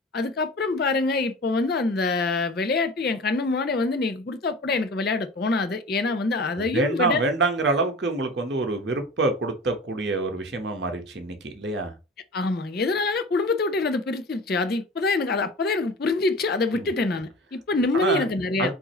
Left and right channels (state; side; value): normal; both; correlation 0.37